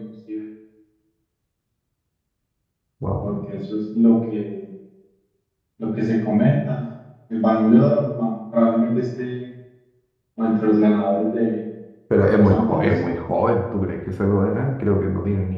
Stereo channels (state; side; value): identical; both; correlation 1.00